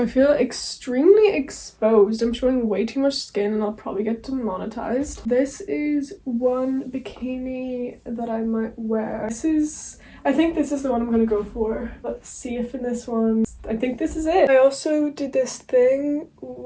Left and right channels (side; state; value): both; identical; correlation 1.00